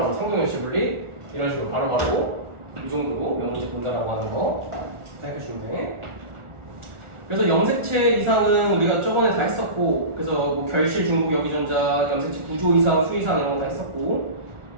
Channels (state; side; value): late; left; 1.4 ms